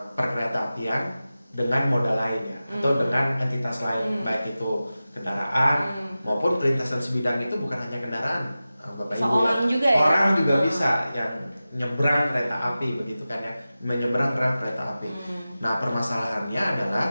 perkereta apian dengan moda lain ya, atau dengan entitas lain, baik itu kendaraan maupun perlintasan sebidang itu bukan hanya kendaraan, Bapak Ibu. Orang juga ya. Orang juga bisa yang nyebrang kereta api begitu kan ya, menyeberang rel kereta api. Nah, permasalahannya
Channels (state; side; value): inverted; both; correlation -0.95